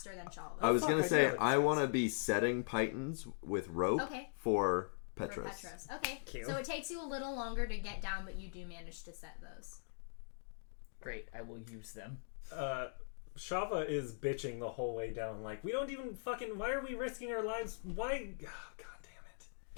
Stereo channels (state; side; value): silent; right; digital silence